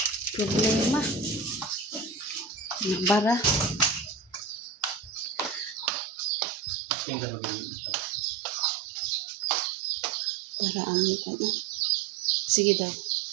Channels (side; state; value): left; drops out; at 5.9 s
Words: Problema. Nagbara. Para among ano. Sige daw.